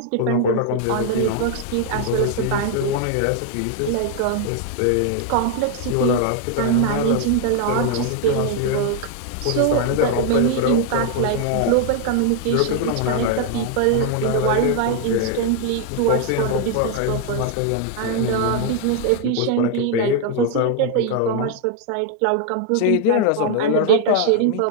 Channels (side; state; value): both; different; correlation 0.00